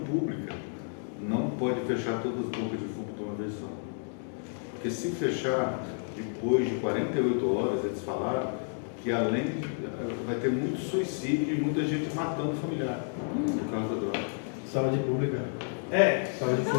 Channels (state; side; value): silent; right; 57 dB below the other